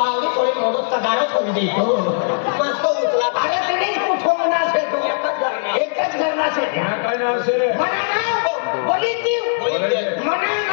थोडी मोठं तगाडो सोडून देतो मस्त उचला अरे तिनेच कुठून से तू एकच घरना से काय नाव सर मना नाव बोली मना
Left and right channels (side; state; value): right; silent; digital silence